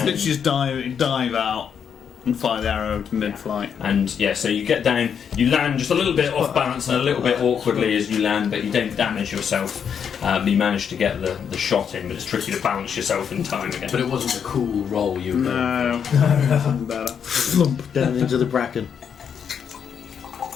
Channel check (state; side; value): quieter; right; 7.5 dB